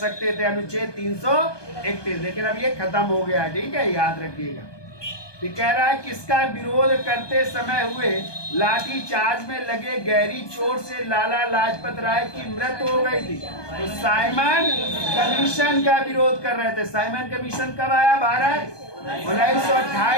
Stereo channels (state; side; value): late; right; 1.2 ms